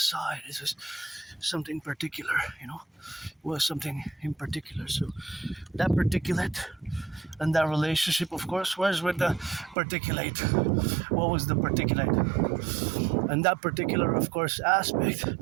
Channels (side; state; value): left; drops out; at 9.8 s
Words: saw it. It's just something particular, It was something in particular. So that particulate and that relationship, of course, was with the particulate. What was the particulate? And that particular, of course, aspect